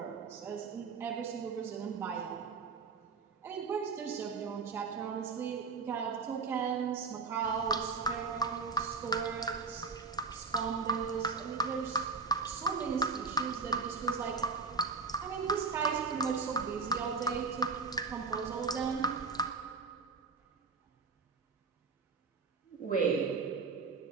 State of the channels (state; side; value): quieter; left; 4.6 dB